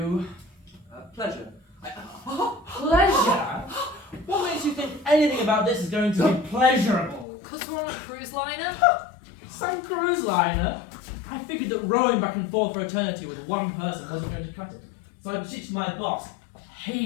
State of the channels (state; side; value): drops out; right; at 7.2 s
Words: Pleasure. Pleasure? What makes you think anything about this is going to be pleasurable? Because we're on a cruise liner? Some cruise liner? I figured that rowing back and forth for eternity with one person wasn't going to cut it. So I beseeched my boss,